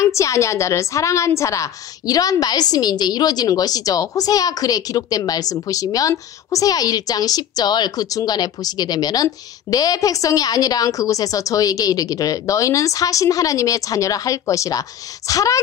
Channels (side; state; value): right; quieter; 9.8 dB